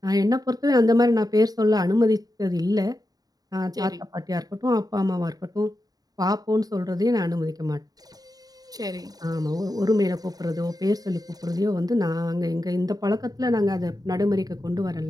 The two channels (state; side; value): late; left; 0.18 ms